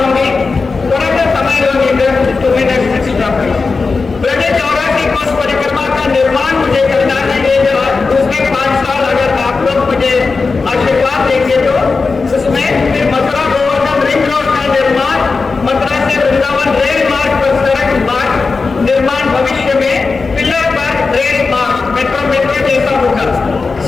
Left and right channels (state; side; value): quieter; right; 4.3 dB